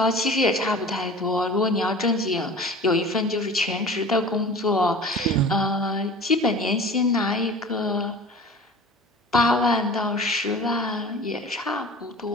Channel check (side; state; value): both; normal; correlation 0.40